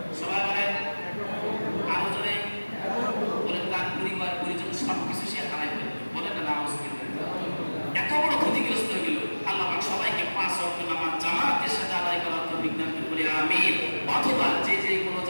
সবাই বলেন আরো জোরে বলেন, তার পরিবার পরিজন সবকিছু সে হারাই ফেলবে, বলেন না নামাজ এত বড় ক্ষতিগ্রস্ত হয়ে গেল। আল্লাহ পাক সবাইকে 5 ওয়াক্ত নামাজ জামাতের সাথে আদায় করার তৌফিক দান করুন, আমিন। অথবা যে যে কোনো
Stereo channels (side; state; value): both; inverted; correlation -1.00